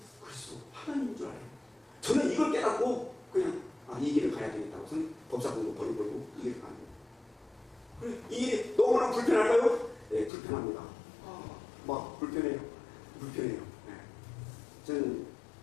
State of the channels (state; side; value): drops out; right; at 10.3 s